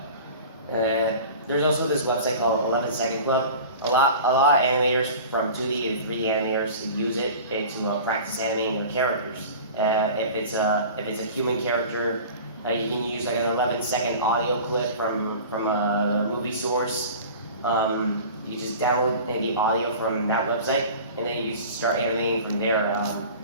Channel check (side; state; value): both; inverted; correlation -0.39